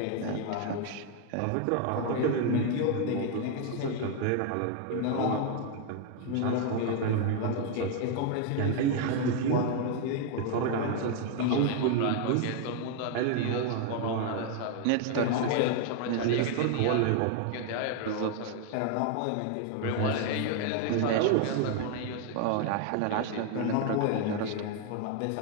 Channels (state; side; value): different; both; correlation 0.01